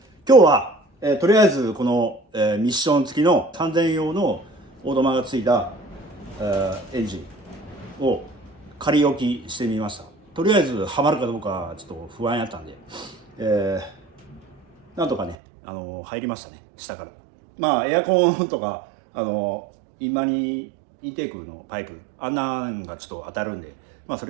日は、とりあえずこの、ミッション付きの3000用のオートマがついた、エンジンを仮置きしてみました。とりあえずはまるかどうかちょっと不安やったんで、なんとかね、入りましたね、下から。まあエアコンとかインマニインテークのパイプあんなんがちょっと当たるんで、まあそ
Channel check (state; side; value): drops out; left; at 15.4 s